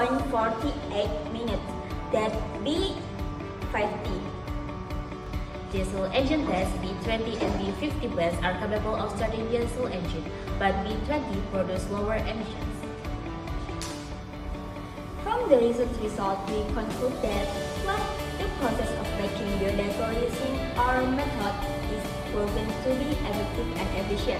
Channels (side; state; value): both; identical; correlation 1.00